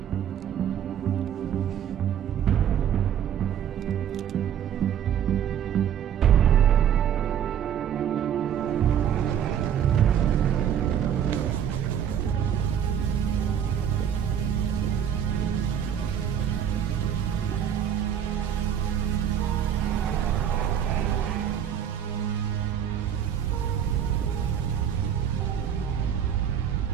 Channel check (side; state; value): left; quieter; 9.1 dB